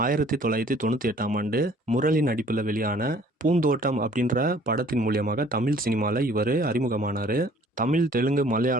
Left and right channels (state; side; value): normal; both; correlation 0.55